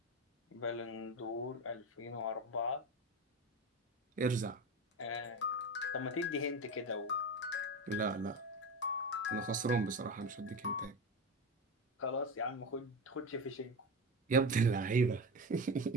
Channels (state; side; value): normal; both; correlation 0.22